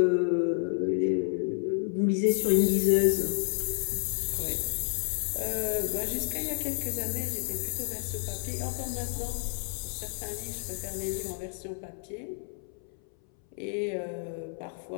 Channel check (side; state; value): right; silent; 58 dB below the other